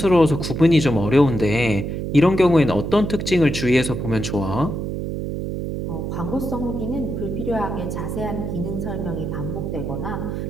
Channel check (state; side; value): noise; right; hum, 4 dB below the sound